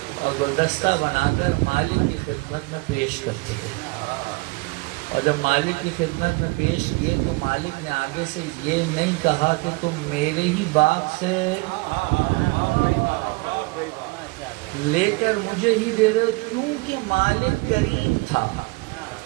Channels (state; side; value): quieter; left; 26.6 dB